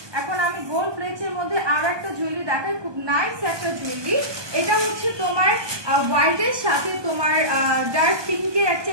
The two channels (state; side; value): late; left; 1.2 ms